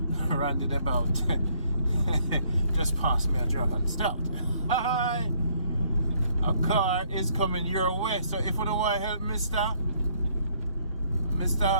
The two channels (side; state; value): both; inverted; correlation -0.66